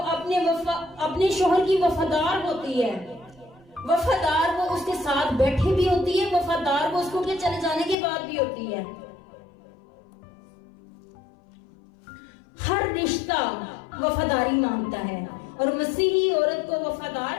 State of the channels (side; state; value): right; drops out; at 8.0 s